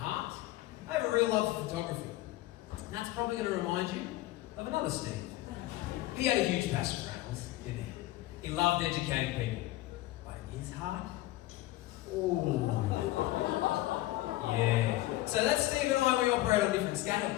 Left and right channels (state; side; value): quieter; right; 16.8 dB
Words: I have a real love for photography. And that's probably going to remind you of another Steve. He had a huge passion for animals, didn't he? He loved educating people. But in his heart, oh, yeah. So that's Steve and I, we operate on different